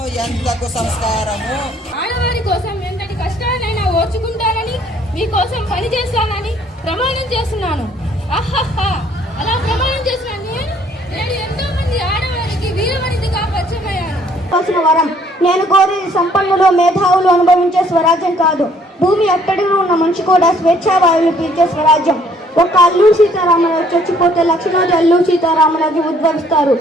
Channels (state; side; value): normal; both; correlation 0.62